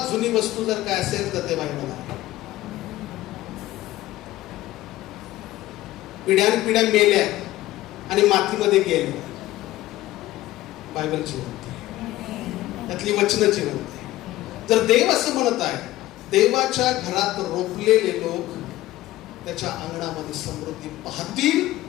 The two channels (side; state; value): right; quieter; 16.1 dB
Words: जुनी वस्तू जर काय असेल तर ते बायबल आहे. पिढ्यान पिढ्या मेल्या आणि मातीमध्ये गेल्या, बायबल जिवंत आहे, त्यातली वचनं जिवंत आहे. जर देव असं म्हणत आहे, देवाच्या घरात रोपलेले लोक त्याच्या अंगणामध्ये समृद्धी पाहतील,